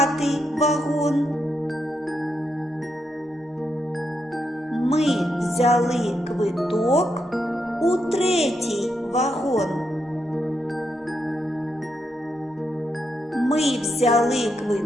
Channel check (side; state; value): both; normal; correlation 0.81